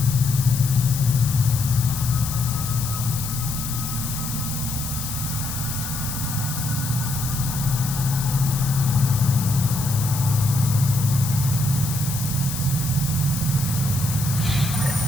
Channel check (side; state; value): left; noise; hiss, 6 dB below the sound